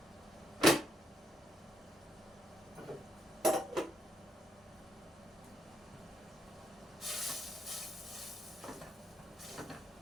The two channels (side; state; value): both; normal; correlation 0.77